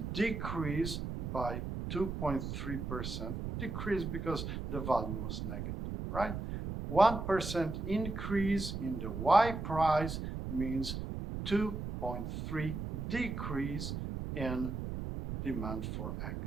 decrease by 2.3%. Decrease because the value was negative, right? 1% increase in the Y price means 2.3 decrease in demand for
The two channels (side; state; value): right; noise; rumble, 4 dB below the sound